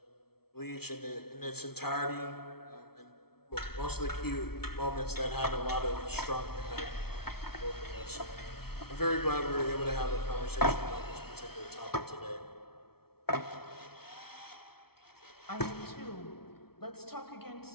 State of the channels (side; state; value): right; late; 0.95 ms